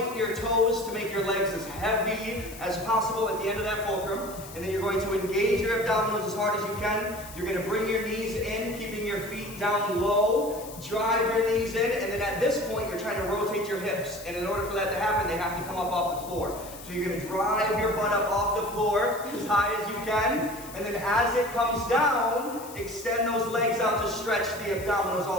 your toes to make your legs as heavy as possible at the end of that fulcrum. And then you're going to engage your abdominals as hard as you can. You're going to bring your knees in, keeping your feet down low. Drive your knees in. And then at this point, you're trying to rotate your hips. And in order for that to happen, they have to come up off the floor. So you're going to drive your butt up off the floor as high as you can. And then as it comes down, extend those legs out to stretch the abdominals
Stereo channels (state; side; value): noise; left; hiss, 16 dB below the sound